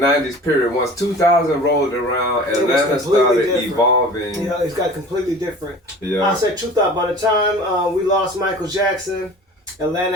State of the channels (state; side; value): normal; both; correlation 0.41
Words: period. Once 2000 rolled around, Atlanta started evolving. Yeah, it's got completely different. Yeah. I said 2000. By the time we lost Michael Jackson,